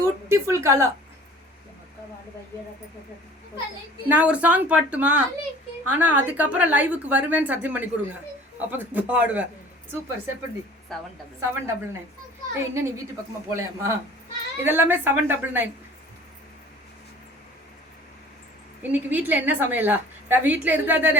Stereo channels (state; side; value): normal; both; correlation 0.48